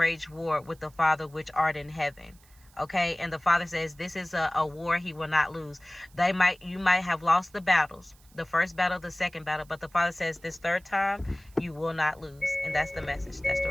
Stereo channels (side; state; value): right; noise; hiss, 28 dB below the sound